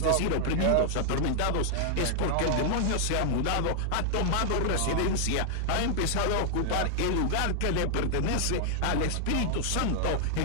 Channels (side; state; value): both; different; correlation 0.00